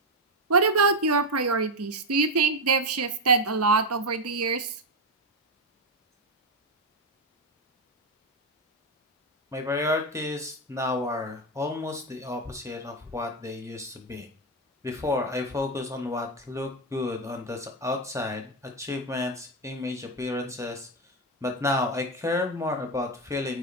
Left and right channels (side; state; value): both; normal; correlation 0.07